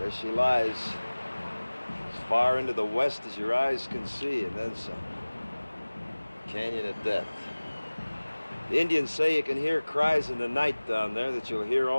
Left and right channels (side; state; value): both; inverted; correlation -1.00